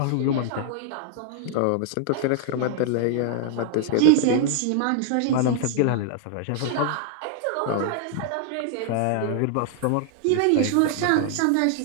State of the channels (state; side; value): different; both; correlation 0.00